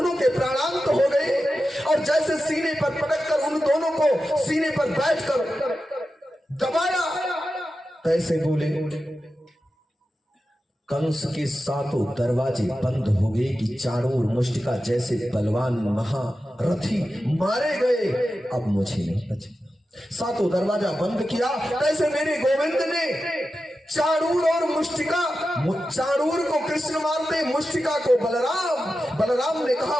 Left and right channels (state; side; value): normal; both; correlation 0.92